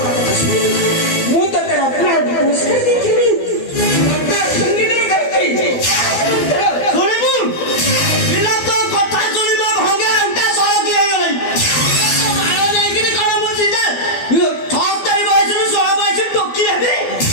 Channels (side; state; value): right; late; 12 ms